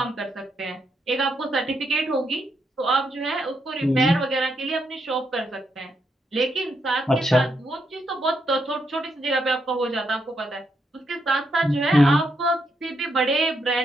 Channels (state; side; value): normal; both; correlation 0.79